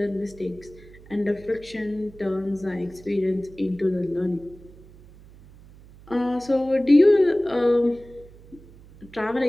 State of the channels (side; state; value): right; noise; hum, 22 dB below the sound